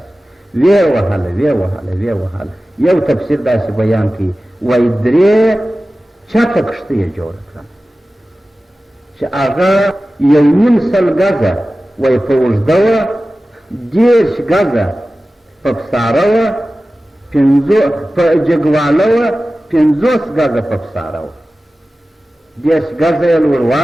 ویې وهله ویې وهله ویې وهله. یو تفسیر داسې بیان کوي وایي 3 چته کښتۍ یې جوړه کړه چې هغه 1.5 سل ګزه وایي په اوږده وه، 10 ګزه په پساره وه، په جګواله وه، 50 ګزه په پساره وه، 10 ګزه یې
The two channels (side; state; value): both; normal; correlation 0.96